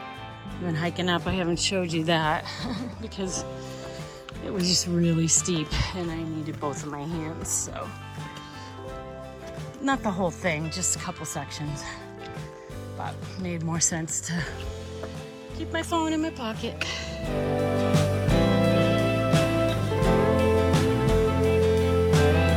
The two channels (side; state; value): both; identical; correlation 1.00